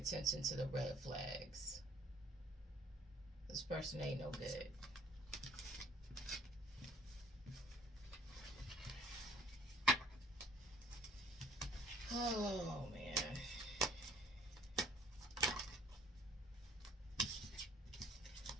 to the red flags. This person ain't no good. Oh, man.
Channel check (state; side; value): normal; both; correlation 0.55